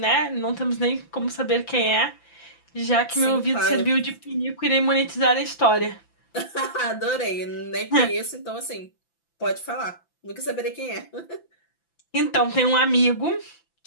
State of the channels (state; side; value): late; right; 5.9 ms